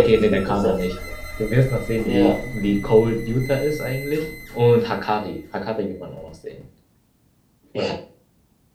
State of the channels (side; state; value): both; identical; correlation 1.00